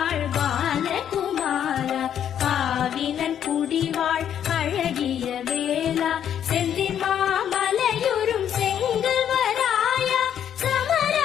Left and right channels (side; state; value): right; quieter; 9.5 dB